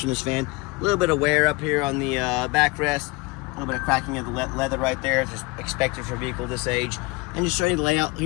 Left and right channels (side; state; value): right; quieter; 24.7 dB